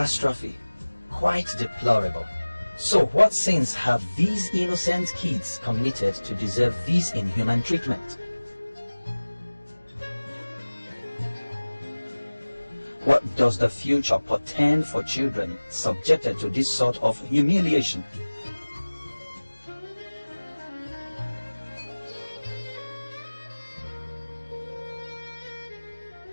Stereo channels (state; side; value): inverted; both; correlation -1.00